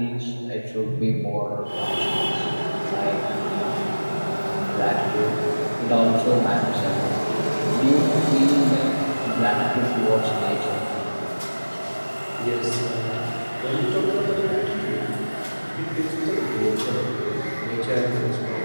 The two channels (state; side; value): inverted; both; correlation -1.00